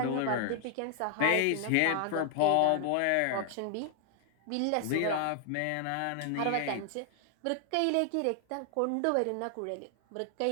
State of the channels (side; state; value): both; different; correlation 0.00